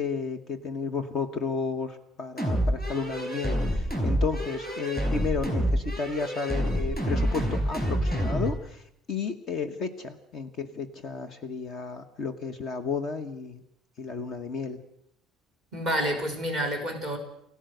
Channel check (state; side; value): normal; both; correlation 0.67